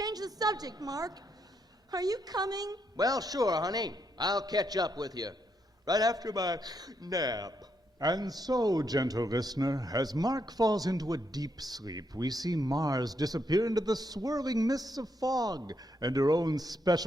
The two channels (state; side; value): normal; both; correlation 0.78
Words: the subject, Mark. Are you coming? Well, sure, honey. I'll catch up with you right after my nap. And so, gentle listener, as Mark falls into a deep sleep, we see Mars disappear into the swirling mists of fog and her own